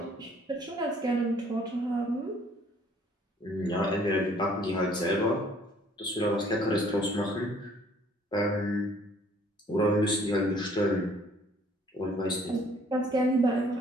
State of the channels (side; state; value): both; normal; correlation 0.59